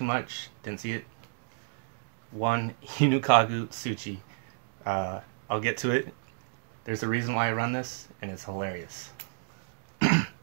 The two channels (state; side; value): silent; left; digital silence